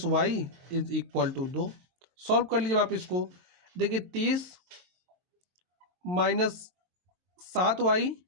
y is equal to 2। Solve कर लीजिए आप इसको। देखिए 30 माइनस 7y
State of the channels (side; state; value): left; late; 22 ms